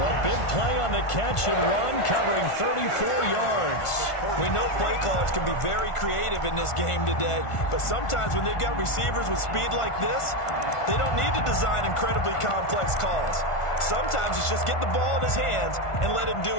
big play on the catch and run, covering 34 yards. We know play callers can be very creative in this game today, but sometimes when they've got receivers with speed like this, they don't need to design incredibly complex calls. Sometimes it's just get the ball in his hands and let him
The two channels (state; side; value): late; right; 1.5 ms